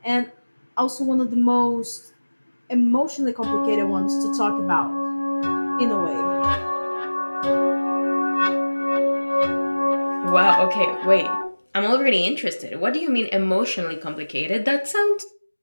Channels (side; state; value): both; inverted; correlation -1.00